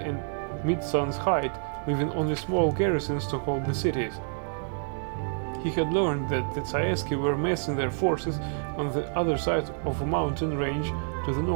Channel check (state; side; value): silent; left; digital silence